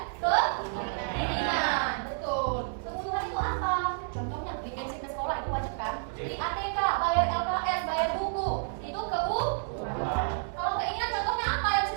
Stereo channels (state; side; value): silent; left; digital silence